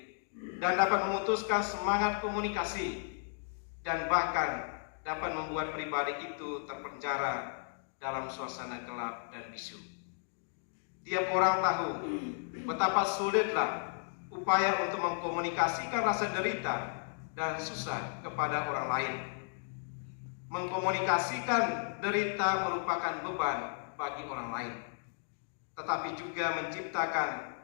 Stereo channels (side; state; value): right; silent; digital silence